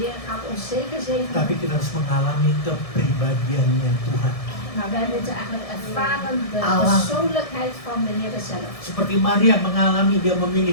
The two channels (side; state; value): right; late; 1.7 ms